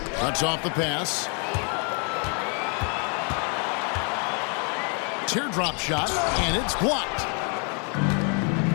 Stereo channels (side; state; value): right; quieter; 38.4 dB